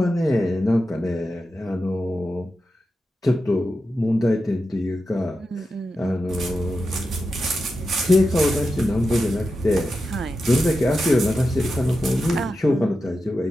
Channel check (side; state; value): both; normal; correlation 0.90